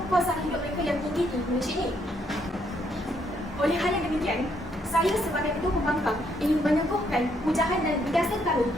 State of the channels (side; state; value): both; normal; correlation 0.72